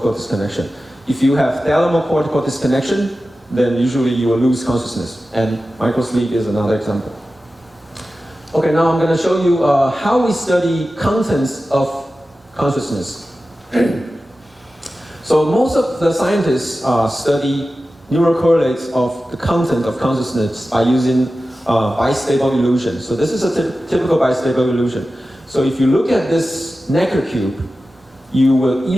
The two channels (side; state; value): both; normal; correlation 0.94